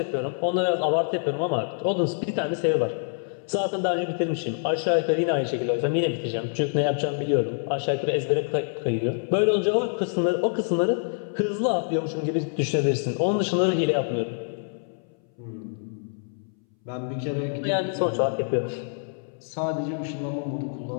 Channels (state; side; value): silent; right; 60 dB below the other